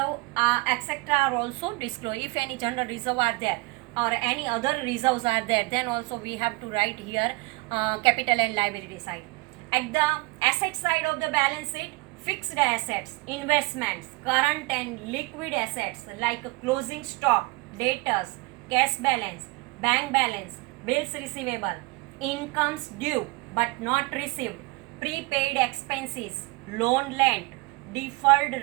etc. are also disclosed. If any general reserve are there or any other reserves are there, then also we have to write here capital and liability side. At the asset side of the balance sheet, fixed assets, investments, current and liquid assets like closing stock, debtors, cash balance, bank balance, bills receivable, incomes due but not received, prepaid expenses, loan lent, deferred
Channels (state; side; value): quieter; left; 24.6 dB